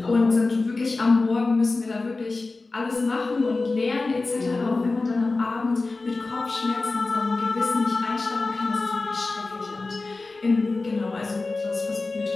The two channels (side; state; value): right; quieter; 3.5 dB